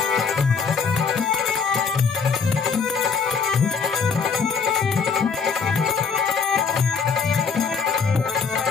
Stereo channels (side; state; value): right; quieter; 5.7 dB